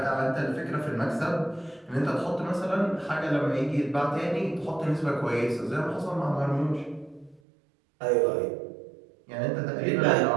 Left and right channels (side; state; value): left; drops out; at 7.4 s